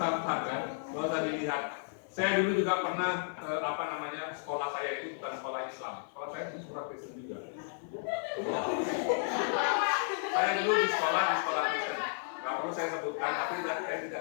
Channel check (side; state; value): right; silent; 56 dB below the other